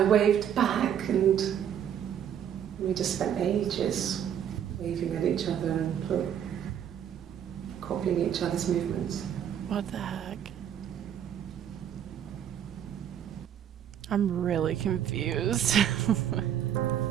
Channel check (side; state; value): left; quieter; 9.4 dB